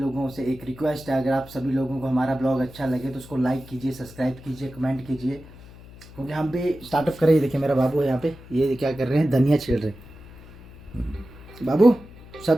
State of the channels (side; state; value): left; noise; hum, 19 dB below the sound